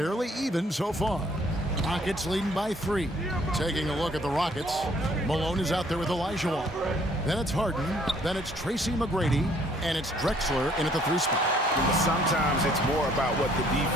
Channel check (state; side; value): normal; both; correlation 0.62